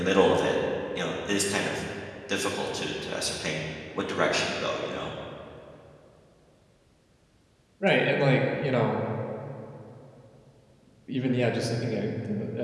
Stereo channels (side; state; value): both; identical; correlation 1.00